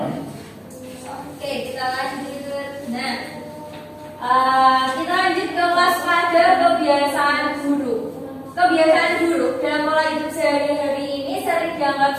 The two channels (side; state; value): both; identical; correlation 1.00